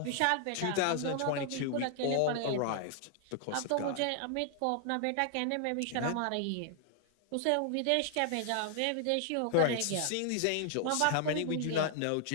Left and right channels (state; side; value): different; both; correlation 0.00